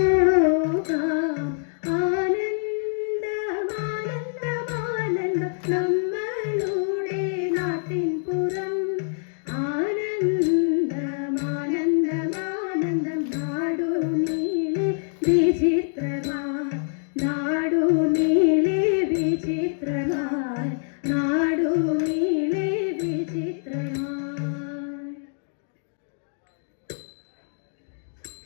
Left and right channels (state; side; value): silent; right; digital silence